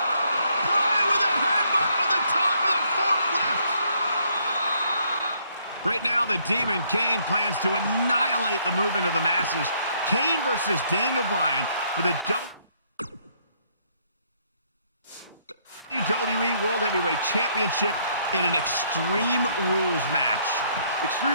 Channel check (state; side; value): inverted; both; correlation -0.69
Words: Bryan with a headbutt on the top of the forklift. Right now, the Demon Kane plans to annihilate the movement of the masses. Kane versus Daniel Bryan for the WWE World Heavyweight Championship in an Extreme Rules match.